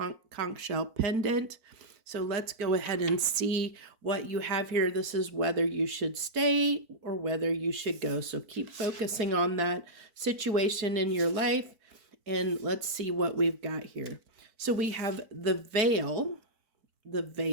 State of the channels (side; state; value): left; late; 4.5 ms